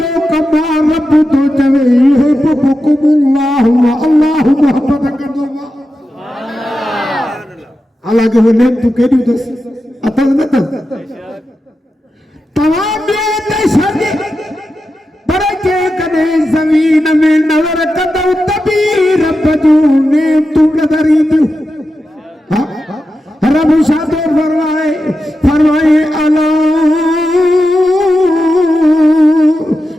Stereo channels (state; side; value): normal; both; correlation 0.90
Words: कमा रब तो चवे युहिब्बुकुमुल्लाह अल्लाह मोहब्बत कंदो आहे। हालांकि वो नेमतूं केॾियूं अथसि अथसि न अथसि तव्हां ॿियो त छॾ पर जेकॾहिं ज़मीन में नज़र कंदव त बि रब जूं नेमतूं नज़र ईंदियूं। रब छा थो फरमाए अला